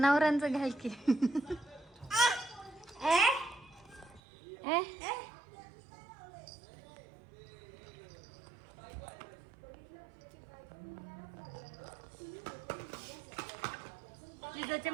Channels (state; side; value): drops out; left; at 4.2 s